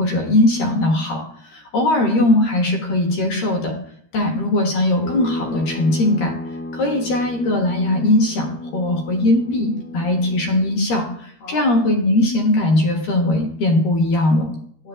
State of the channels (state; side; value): late; right; 13 ms